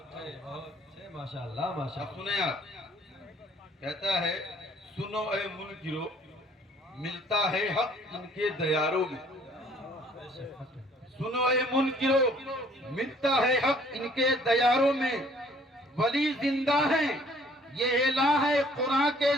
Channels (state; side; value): normal; both; correlation 0.58